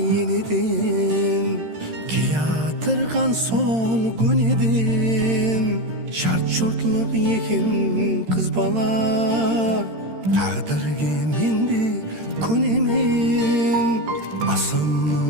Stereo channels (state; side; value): late; left; 13 ms